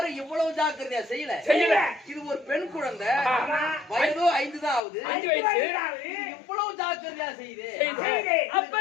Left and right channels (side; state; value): right; drops out; at 4.8 s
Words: இவ்வளவு ஜாக்கிரதையா செய்யல. இது ஒரு பெண் குழந்தை, வயதோ 5 தான் ஆகுது. இவ்வளவு ஜாக்கிரதையா செய்யுது.